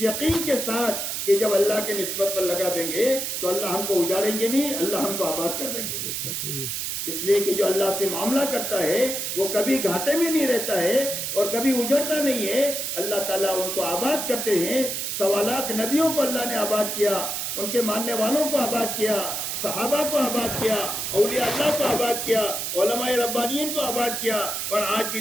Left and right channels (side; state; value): right; noise; hiss, 3 dB below the sound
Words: یقین کے ساتھ کہ جب اللہ کے نسبت پر لگا دیں گے تو اللہ ہم کو اجاڑیں گے نہیں، اللہ ہم کو آباد کر دیں گے. اس لیے کہ جو اللہ سے معاملہ کرتا ہے وہ کبھی گھاٹے میں نہیں رہتا ہے اور کبھی اجڑتا نہیں ہے. اللہ تعالیٰ ان کو آباد کرتے ہیں. 1.25 لاکھ نبیوں کو اللہ نے آباد کیا، ان کے ماننے والوں کو آباد کیا، صحابہ کو آباد کیا، اولیاء اللہ کو آباد کیا، علماء ربانیین کو آباد کیا. اور آج بھی